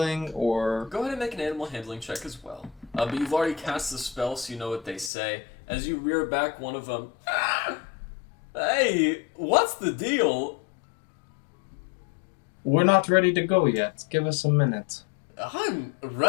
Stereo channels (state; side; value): drops out; right; at 5.1 s